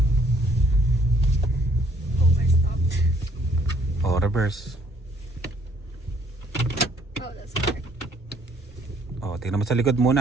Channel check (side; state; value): both; normal; correlation 0.64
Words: stopped. Reverse. That's hard. Tingnan mo sa likod